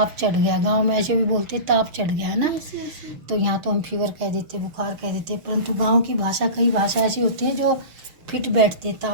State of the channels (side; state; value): left; late; 6.2 ms